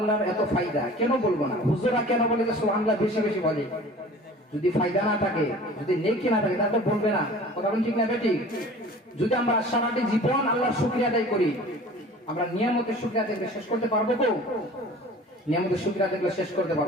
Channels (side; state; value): both; normal; correlation 0.44